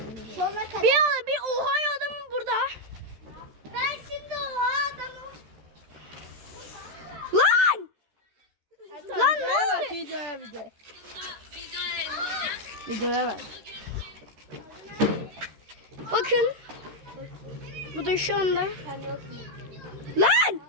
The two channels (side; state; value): left; late; 13 ms